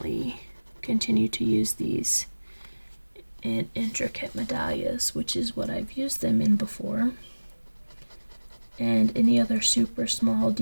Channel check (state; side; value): inverted; both; correlation -1.00